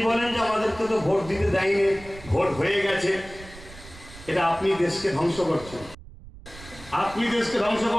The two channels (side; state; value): right; noise; rumble, 18 dB below the sound